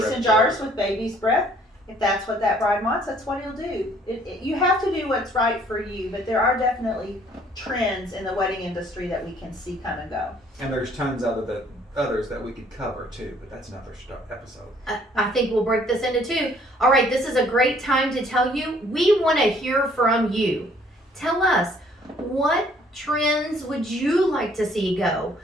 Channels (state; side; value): normal; both; correlation 0.61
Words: jars with baby's breath, if that's what that bride wants, that's what he'll do. You have to do what's right for you, but there are definitely trends in the wedding industry that we can see come and go. And there's tons of others that we could cover too, but that's another episode. I think we'll break this into two. All right, this is a great time to tell you, we want to hear from you. Tell us, what trends would you like to see go?